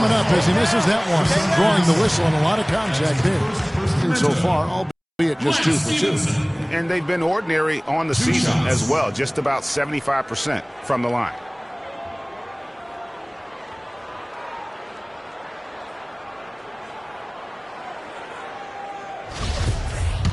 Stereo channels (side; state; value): both; identical; correlation 1.00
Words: up as he misses that one. Drawing the whistle and a lot of contact there. And so far, albeit just 2 for 2. And they've been ordinary on the season as well, just about 75% from the line.